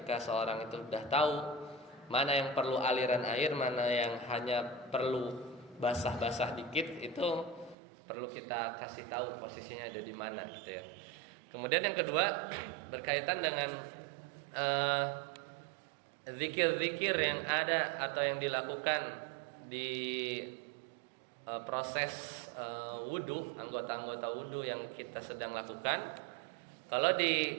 seorang itu sudah tahu mana yang perlu aliran air, mana yang hanya perlu basah-basah dikit, itu perlu kita kasih tahu posisinya ada di mana gitu ya. Kemudian yang kedua berkaitan dengan zikir-zikir yang ada atau yang dilakukan di proses wudu, anggota-anggota wudu yang kita sedang lakukan. Kalau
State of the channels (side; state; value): left; drops out; at 7.8 s